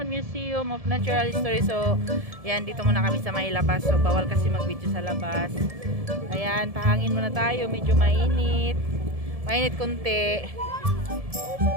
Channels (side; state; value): left; late; 1.7 ms